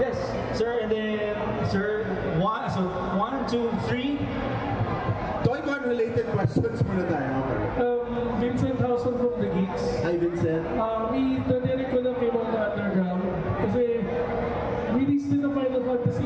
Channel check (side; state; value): both; identical; correlation 1.00